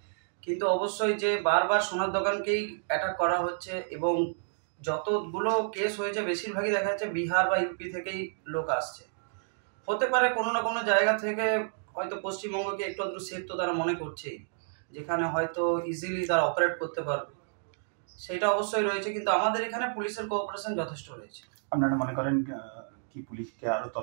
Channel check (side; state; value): left; silent; digital silence